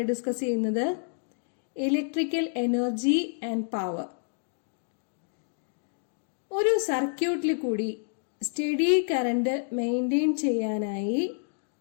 ഡിസ്കസ് ചെയ്യുന്നത്, ഇലക്ട്രിക്കൽ എനർജി ആൻഡ് പവർ. ഒരു സർക്യൂട്ടിൽ കൂടി സ്റ്റഡി കറന്റ് മെയിൻറ്റെയിൻ ചെയ്യാനായി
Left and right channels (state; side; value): silent; right; digital silence